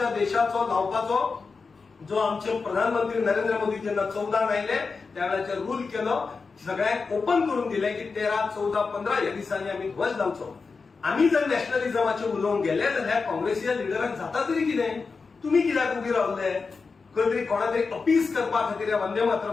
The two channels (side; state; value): right; quieter; 4.6 dB